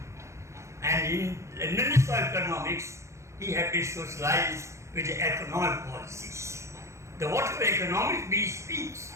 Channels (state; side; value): late; left; 0.14 ms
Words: and in London School of Economics, he had been socialized with the economic policies. The whatever economics he speaks